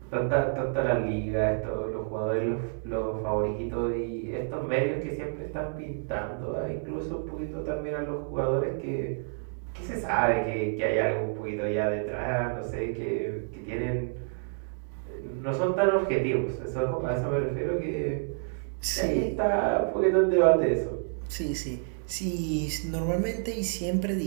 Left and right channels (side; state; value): left; silent; digital silence